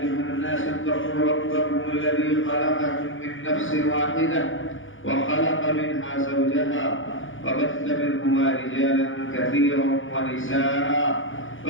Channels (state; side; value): late; right; 0.57 ms